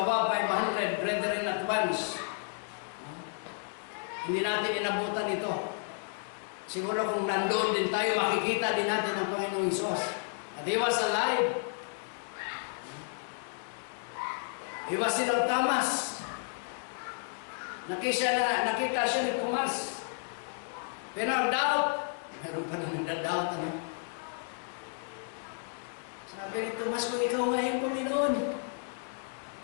500 brethren at once. Hindi natin inabutan ito. Siguro kung nandoon din tayo, makikita din natin ang Panginoong Hesus. At He was alive. He was in Thomas. Nakita siya ni Thomas. Pero ang doubt, meron pa na nagda-doubt. Ano? Sabi ni Thomas, kung ikaw nga yung Panginoon,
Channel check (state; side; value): silent; right; 56 dB below the other